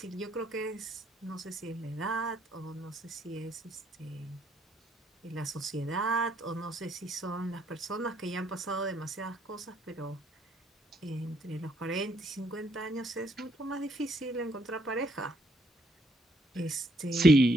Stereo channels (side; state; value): both; normal; correlation 0.70